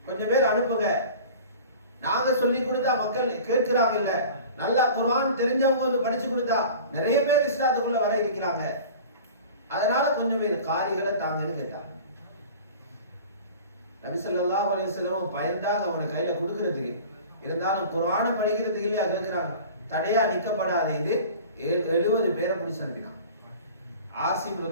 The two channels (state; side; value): inverted; both; correlation -0.41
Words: கொஞ்சம் பேர் அனுப்புங்க. நாங்க சொல்லி கொடுத்தா மக்கள் கேட்கிறாங்க இல்ல, நல்லா குர்ஆன் தெரிஞ்சவங்க வந்து படிச்சு கொடுத்தா நிறைய பேர் இஸ்லாத்துக்குள்ள வர இருக்கிறாங்க, அதனால கொஞ்சம் பேர் காரிகளை தாங்கன்னு கேட்டாங்க. நபி ஸல்லல்லாஹு அலைஹி வஸல்லம் பயந்தாங்க அவனை கையில கொடுக்கிறதுக்கு. இருந்தாலும் குர்ஆனை படிக்கிறதுக்கு இல்லையா கேட்கிறாங்க, தடையா நிக்கப்படாத இது 70 பேரை பிடிச்சு அனுப்பினான். ஆசிம்